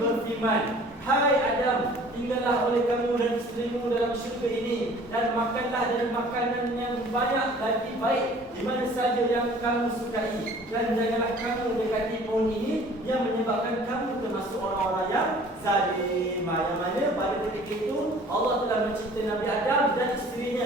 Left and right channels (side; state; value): both; normal; correlation 0.50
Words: hai Adam, tinggallah oleh kamu dan isterimu dalam syurga ini dan makanlah dari makanan yang banyak lagi baik di mana saja yang kamu sukai dan janganlah kamu dekati pohon ini yang menyebabkan kamu termasuk orang-orang yang zalim. Yang mana pada ketika itu Allah telah mencipta Nabi Adam dan